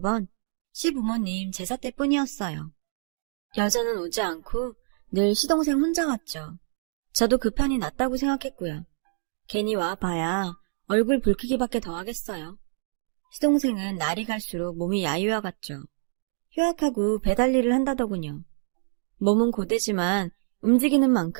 시부모님 제사 때뿐이었어요. 여자는 오지 않고 늘 시동생 혼자 왔죠. 저도 그 편이 낫다고 생각했고요. 괜히 와봐야 얼굴 붉히기밖에 더 하겠어요. 시동생은 날이 갈수록 몸이 야유어갔죠. 휴학하고 배달 일을 한다더군요. 몸은 고되지만 움직이는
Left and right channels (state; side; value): silent; left; digital silence